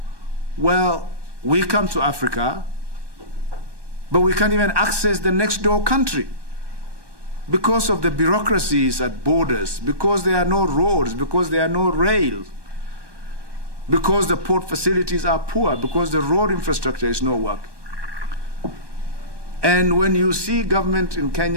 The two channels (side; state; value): left; late; 1.2 ms